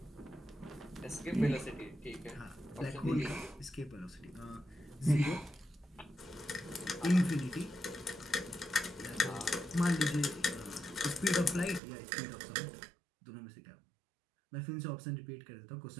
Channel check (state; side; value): drops out; left; at 11.8 s